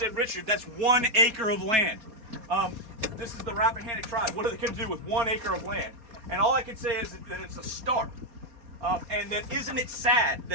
Richard, that's 1 acre of land. This is the Rappahannock tribe. What are they going to do with 1 acre of land? And all I can say is that it's a start. And that isn't it sad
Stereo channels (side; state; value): left; late; 4.2 ms